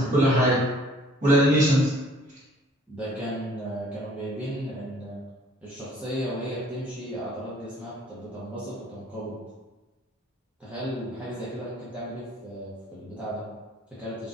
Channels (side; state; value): both; normal; correlation 0.57